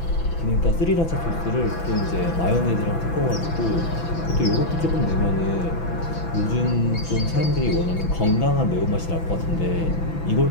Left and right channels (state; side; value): late; right; 6.0 ms